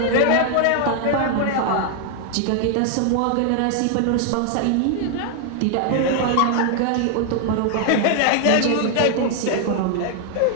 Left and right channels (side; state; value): both; different; correlation 0.00